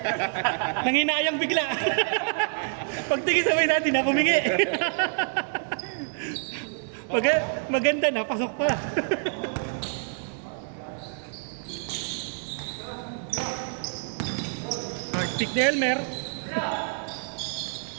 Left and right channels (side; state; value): left; silent; 60 dB below the other